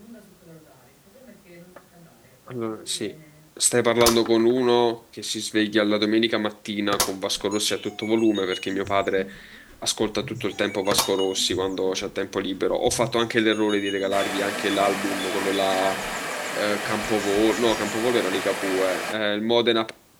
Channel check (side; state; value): both; identical; correlation 1.00